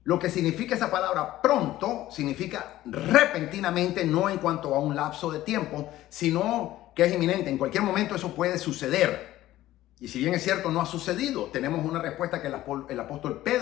Lo que significa esa palabra pronto significa repentinamente, no en cuanto a un lapso de tiempo, sino que es inminente. En cualquier momento eso puede suceder. Y si bien es cierto, no ha sucedido, tenemos una respuesta que el apóstol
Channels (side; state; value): right; quieter; 15.0 dB